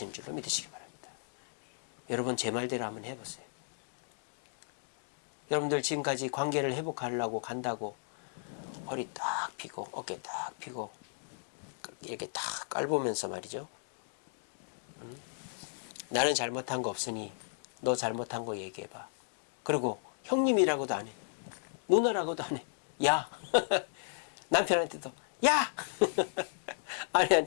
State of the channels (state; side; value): silent; right; digital silence